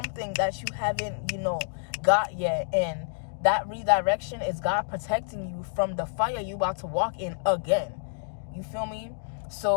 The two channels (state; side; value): silent; right; digital silence